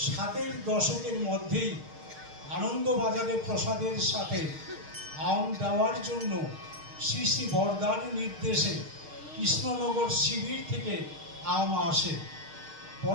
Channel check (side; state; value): left; late; 6.5 ms